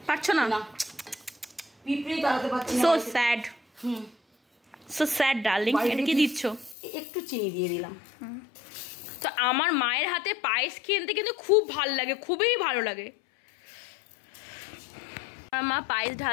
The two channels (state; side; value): drops out; right; at 6.8 s